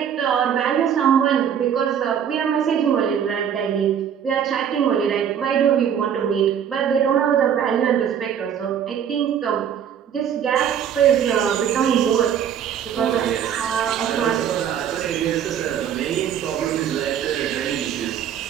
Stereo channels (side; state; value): left; quieter; 8.8 dB